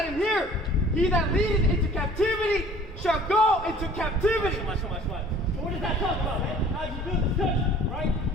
him hear. He that leadeth into captivity shall go into captivity. So much. So what does that talk about, man? How you build this country, right?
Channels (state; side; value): normal; both; correlation 0.51